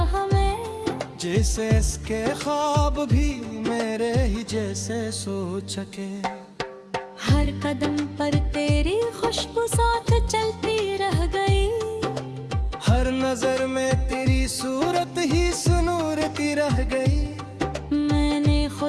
में। जैसे इसके ख्वाब भी मेरे ही जैसे सोच सके। हर कदम पर तेरी खुशबू साथ चलती रह गई। हर नजर में तेरी सूरत ही सुनूरती रह गई। मैंने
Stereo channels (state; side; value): identical; both; correlation 1.00